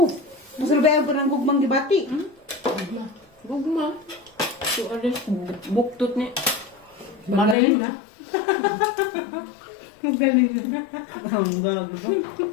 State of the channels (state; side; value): drops out; right; at 7.6 s